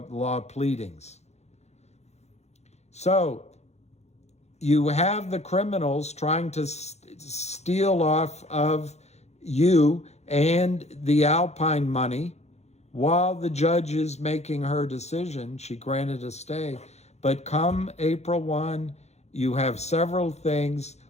pleadings. So you have the criminals trying to steal off of you and the Alpine money while the judge is making her decision. She granted a stay. But come April 1, you have several things,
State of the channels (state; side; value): late; right; 0.32 ms